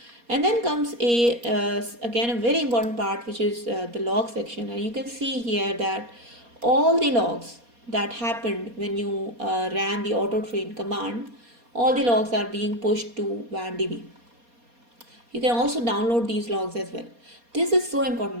And then comes a again a very important part, which is the log section. And you can see here that all the logs that happened when you ran the Autotrain command, all the logs are being pushed to Wandb. You can also download these logs as well. This is so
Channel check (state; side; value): late; left; 4.2 ms